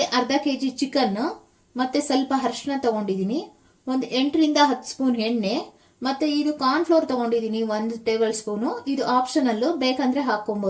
ಅರ್ಧ ಕೆಜಿ ಚಿಕನ್, ಮತ್ತೆ ಸ್ವಲ್ಪ ಅರಿಶಿನ ತಗೊಂಡಿದ್ದೀನಿ, ಒಂದು 8 ರಿಂದ 10 ಸ್ಪೂನ್ ಎಣ್ಣೆ, ಮತ್ತೆ ಇದು ಕಾರ್ನ್ ಫ್ಲೋರ್ ತಗೊಂಡಿದ್ದೀನಿ 1 ಟೇಬಲ್ ಸ್ಪೂನು. ಇದು ಆಪ್ಷನಲ್ಲು, ಬೇಕಂದ್ರೆ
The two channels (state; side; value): identical; both; correlation 1.00